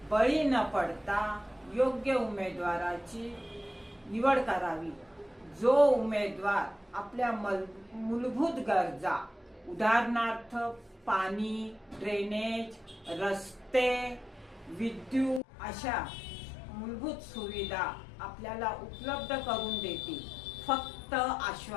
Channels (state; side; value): drops out; right; at 15.4 s